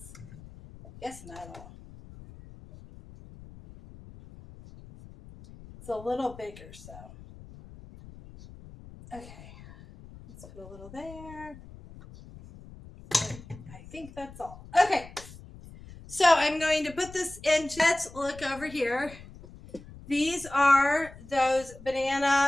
I guess, metal. It's a little bigger, so. Okay, let's put a little there. I think that's all. Okay, so I'm going to put this into, let's look over here. These are those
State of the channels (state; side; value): noise; left; rumble, 18 dB below the sound